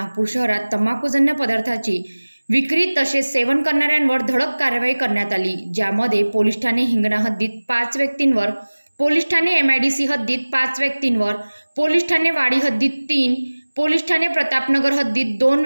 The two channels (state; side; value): inverted; both; correlation -1.00